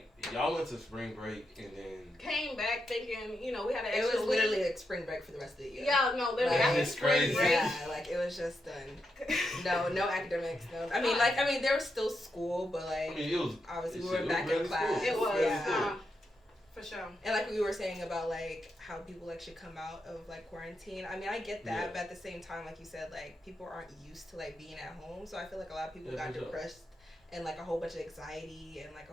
y'all went to spring break and then came back thinking, we had an extra. It was literally like spring break for the rest of the year. Yeah, no, literally after spring break. Yeah, like it was just done. No academics. No, I mean, there was still school, but like it was obviously we were back in class. It was, for sure. And like we were saying about like how people like should come out of like quarantine. I mean, I get that, but at the same time, like you said, like people aren't used to like being at home, so I feel like a lot of people got depressed. And like a whole bunch of anxiety and like a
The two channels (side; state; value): both; normal; correlation 0.84